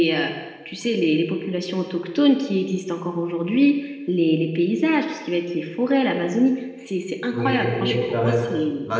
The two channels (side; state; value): both; identical; correlation 1.00